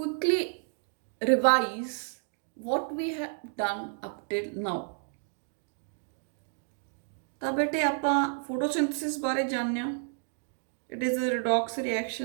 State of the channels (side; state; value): left; silent; digital silence